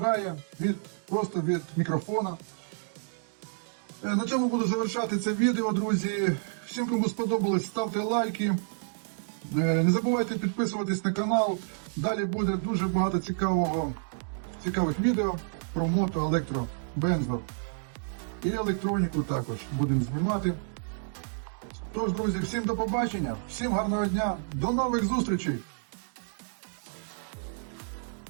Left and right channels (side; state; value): left; silent; digital silence